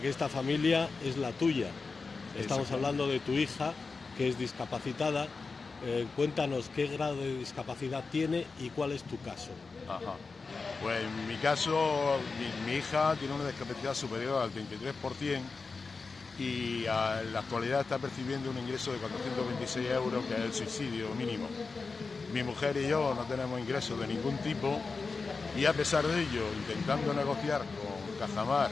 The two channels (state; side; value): quieter; right; 4.4 dB